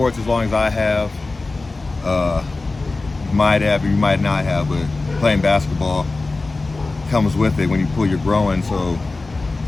as long as I have, you might have or you might not have, but playing basketball comes with it when you pull your groin, so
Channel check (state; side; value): quieter; right; 3.4 dB